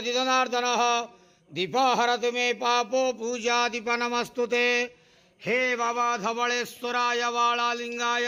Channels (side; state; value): both; identical; correlation 1.00